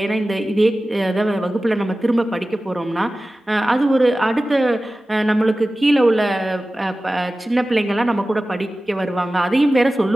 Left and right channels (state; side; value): normal; both; correlation 0.96